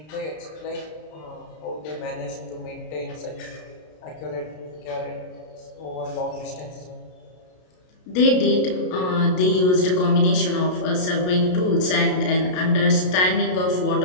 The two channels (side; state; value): right; late; 33 ms